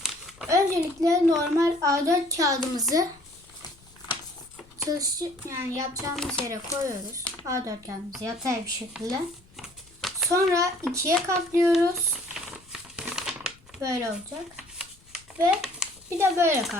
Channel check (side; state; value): left; noise; rumble, 27 dB below the sound